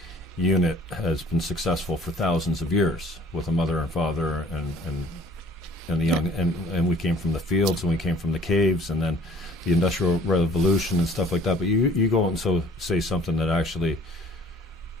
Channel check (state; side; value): normal; both; correlation 0.53